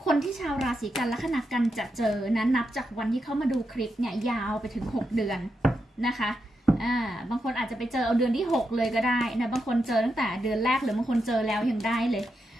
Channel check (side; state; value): both; normal; correlation 0.85